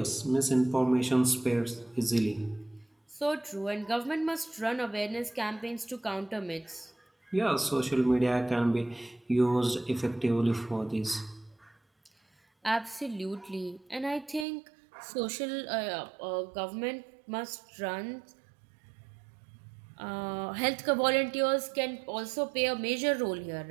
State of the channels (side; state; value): left; drops out; at 14.5 s